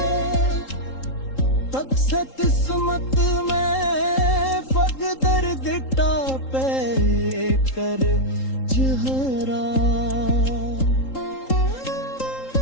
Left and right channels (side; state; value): right; late; 3.8 ms